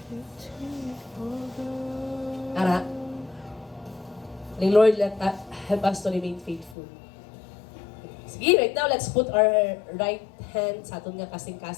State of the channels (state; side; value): drops out; right; at 6.8 s